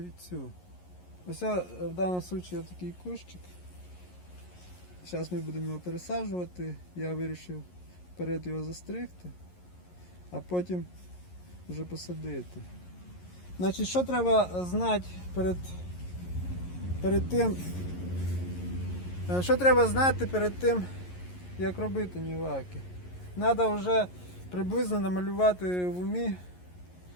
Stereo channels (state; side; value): late; right; 11 ms